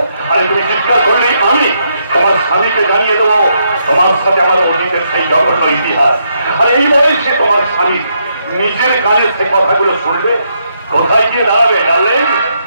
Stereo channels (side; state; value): both; inverted; correlation -0.77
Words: আরে তুমি চিৎকার করলেই আমি তোমার স্বামীকে জানিয়ে দেবো তোমার সাথে আমার অতীতের সেই জঘন্য ইতিহাস। আর এই বয়সে তোমার স্বামী নিজের কানে সে কথাগুলো শুনবে, কোথায় গিয়ে দাঁড়াবে? ডার্লিং,